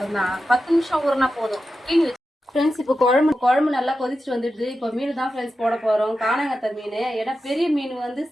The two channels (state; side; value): normal; both; correlation 0.91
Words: தான், 10 நிமிஷம் ஊறினா போதும். கிளீன் ஃப்ரெண்ட்ஸ், இப்போ குழம்பு நல்லா கொதிச்சுட்டு வந்துடுது. இப்போ மீன் தான் ஃப்ரெண்ட்ஸ் போட போகிறோம். காணாங்கத்தை மீன். ஏன்னா பெரிய மீன் வந்து